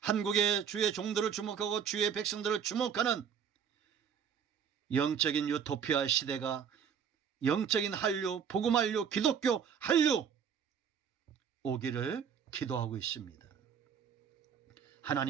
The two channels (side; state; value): left; quieter; 7.5 dB